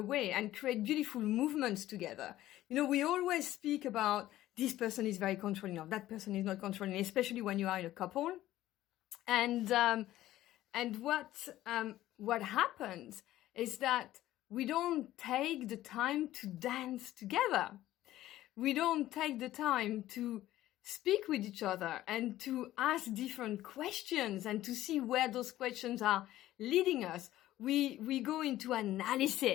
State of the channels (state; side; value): quieter; right; 14.6 dB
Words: and create beautiful movements together. We always speak about this person is very controlling, or that person is not controlling, especially when you are in a couple. And what happens is that we don't take the time to dance together. We don't take the time to speak with each other and to ask different questions and to see where those questions are leading us. We go into